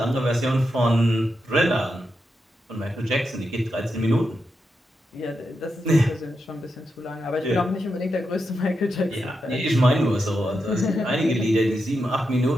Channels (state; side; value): normal; both; correlation 0.86